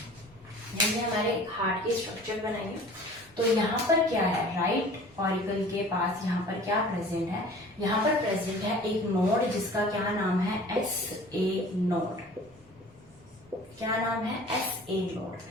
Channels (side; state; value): both; normal; correlation 0.45